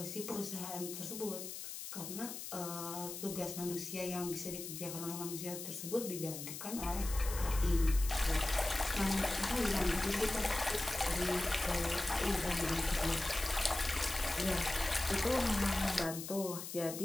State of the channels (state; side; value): noise; left; hiss, 8 dB below the sound